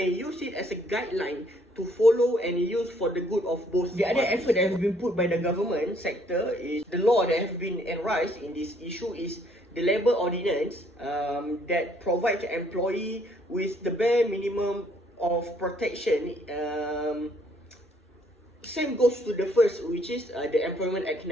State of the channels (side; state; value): both; normal; correlation 0.65